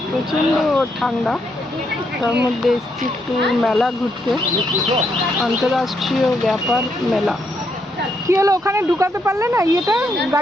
প্রচণ্ড ঠান্ডা, তার মধ্যে এসছি একটু মেলা ঘুরতে, আন্তর্রাষ্ট্রীয় ব্যাপার মেলা। কি হলো, ওখানে ঢুকাতে পারলে না ইয়েটা,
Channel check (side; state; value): both; normal; correlation 0.77